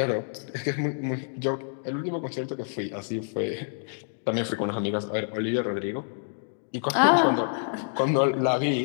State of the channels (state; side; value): silent; right; digital silence